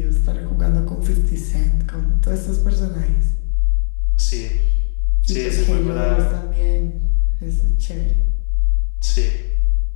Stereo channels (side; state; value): right; silent; 61 dB below the other